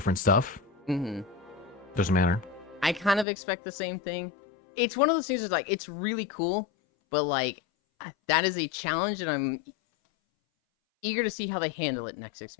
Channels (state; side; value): drops out; right; at 3.2 s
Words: stuff. Mm-hmm. Doesn't matter. I kind of expect the same thing. It's one of those things that's like, it's really cool, but like, that is a challenge, and I'm eager to see how they handle it next